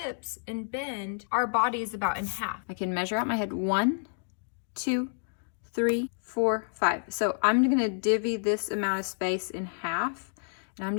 and bend, our body is about in half. I can measure out my head. 1, 2, 3, 4, 5. So I'm gonna divvy this amount of space in half, and I'm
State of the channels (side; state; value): right; silent; digital silence